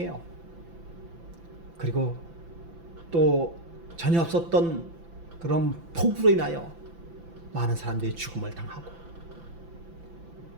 그리고 또 전혀 없었던 그런 폭우로 인하여 많은 사람들이 죽음을 당하고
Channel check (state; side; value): late; left; 5.9 ms